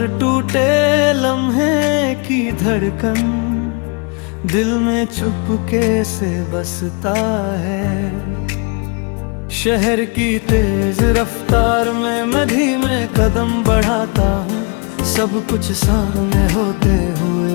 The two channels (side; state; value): right; quieter; 34.4 dB